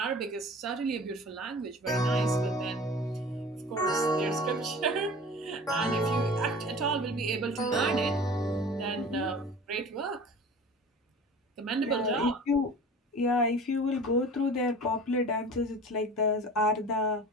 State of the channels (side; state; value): both; normal; correlation 0.41